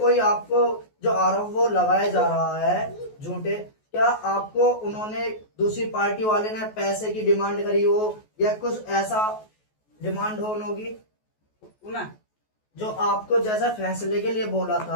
आपको जो आरोप वो लगाया जा रहा है झूठे, क्या आपको उन्होंने दूसरी पार्टी वाले ने पैसे की डिमांड करी हो या कुछ ऐसा डिमांड हो उनकी? उन्हें जो आपको जैसा फैसले के लिए बोला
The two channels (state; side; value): late; right; 14 ms